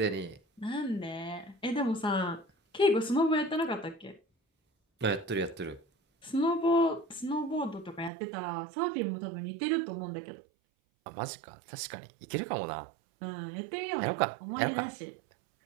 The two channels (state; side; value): drops out; left; at 8.1 s